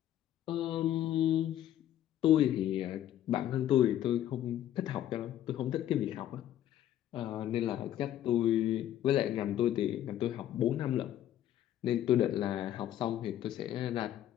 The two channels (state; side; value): quieter; right; 11.9 dB